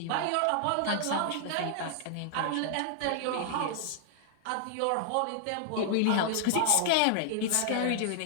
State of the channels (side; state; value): both; different; correlation -0.01